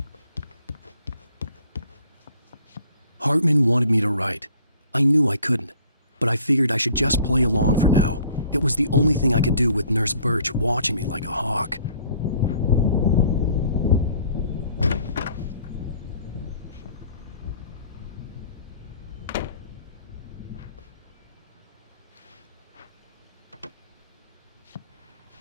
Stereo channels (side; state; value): both; inverted; correlation -0.55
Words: Hartman wanted me to write. I knew I couldn't, but I figured I should just play along for now. It was the only thing I could do with Nurse Birch watching me like a hawk.